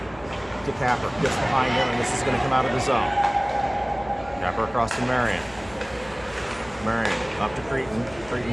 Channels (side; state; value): left; noise; hum, 21 dB below the sound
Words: to Capper, gets behind him, and this is going to come out of the zone. Capper across to Marion. Marion up to Cretan.